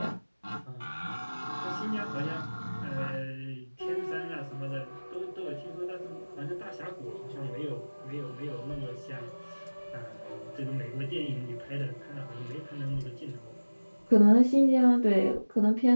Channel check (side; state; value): both; inverted; correlation -1.00